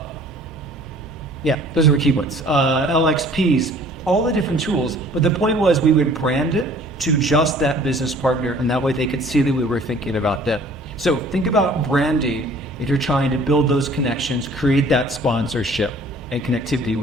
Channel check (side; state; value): both; normal; correlation 0.52